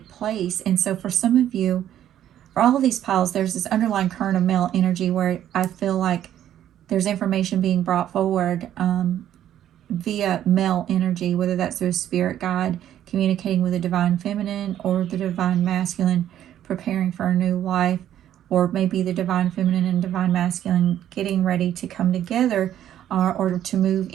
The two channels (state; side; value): quieter; left; 11.3 dB